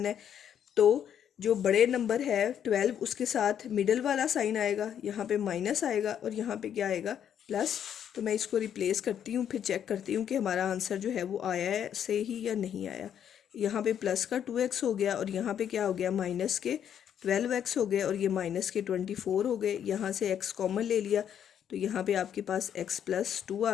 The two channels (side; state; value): right; quieter; 9.2 dB